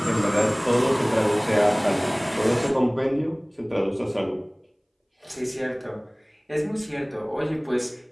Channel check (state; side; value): identical; both; correlation 1.00